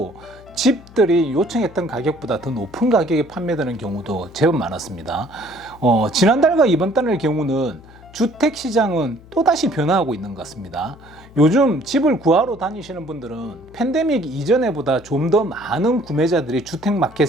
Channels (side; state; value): left; noise; hum, 22 dB below the sound